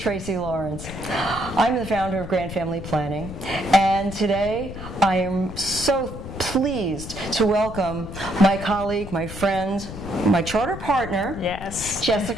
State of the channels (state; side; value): noise; left; rumble, 10 dB below the sound